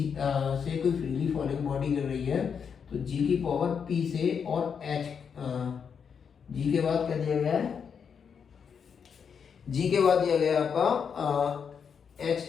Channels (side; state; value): right; quieter; 6.8 dB